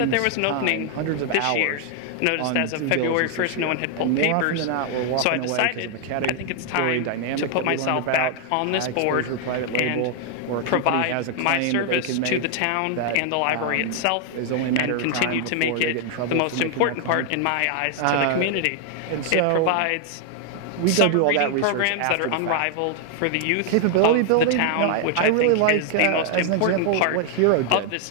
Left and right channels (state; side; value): different; both; correlation 0.00